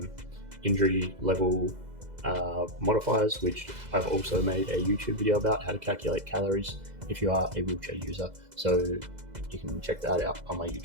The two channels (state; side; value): late; left; 2.0 ms